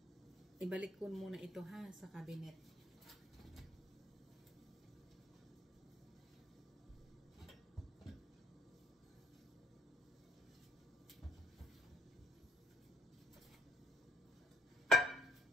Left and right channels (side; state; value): both; normal; correlation 0.66